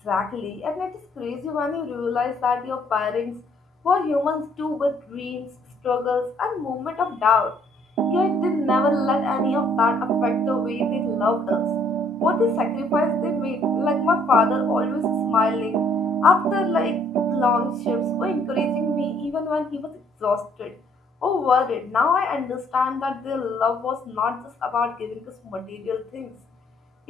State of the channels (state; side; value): normal; both; correlation 0.64